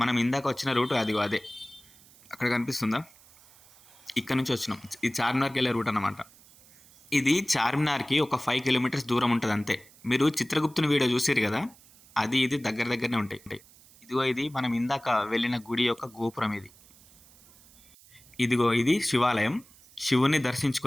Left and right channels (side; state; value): right; noise; hiss, 25 dB below the sound